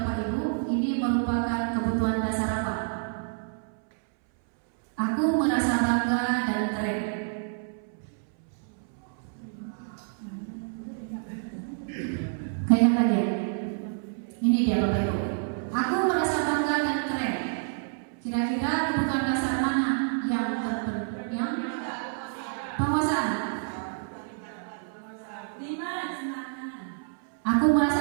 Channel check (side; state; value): left; silent; 59 dB below the other